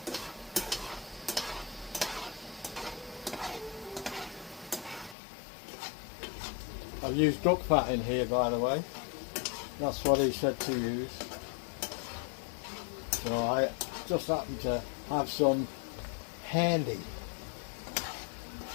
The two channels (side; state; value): right; drops out; at 5.2 s